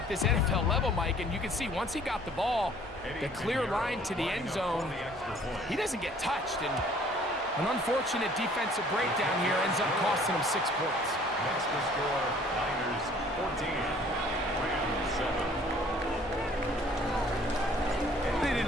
this NFL level, Mike, and you can see once he got the ball, the clear line to the end zone, he doesn't get touched, and an unfortunate defensive breakdown here ends up costing him 6 points. Next to score, Niners 14, Rams 7. They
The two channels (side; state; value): both; normal; correlation 0.55